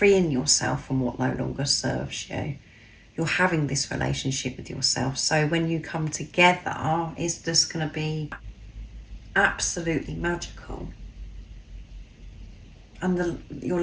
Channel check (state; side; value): identical; both; correlation 1.00